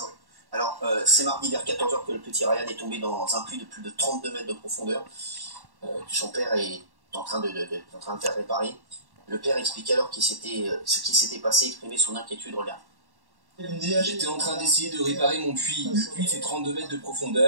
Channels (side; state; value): left; late; 1.1 ms